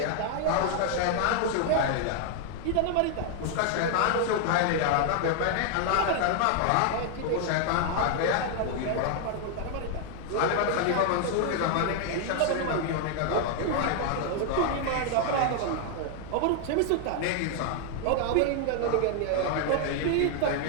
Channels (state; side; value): different; both; correlation 0.00